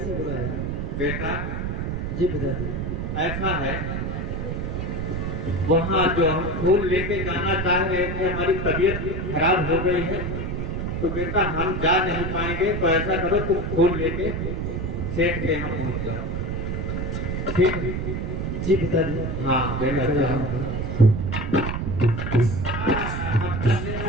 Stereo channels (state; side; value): noise; right; rumble, 2 dB below the sound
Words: बुलाया? बेटा जी पिताजी। ऐसा है वहाँ जो हम फूल लेके जाना चाह रहे थे हमारी तबीयत खराब हो गई है तो बेटा हम जा नहीं पाएंगे तो ऐसा करो तुम फूल लेके सेठ के यहाँ पहुँच जाओ ठीक है? जी पिताजी। हाँ बेटा